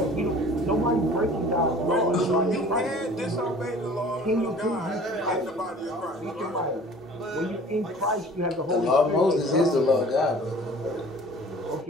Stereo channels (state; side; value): normal; both; correlation 0.47